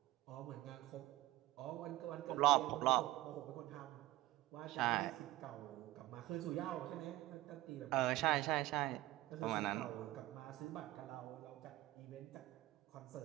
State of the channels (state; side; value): quieter; left; 16.6 dB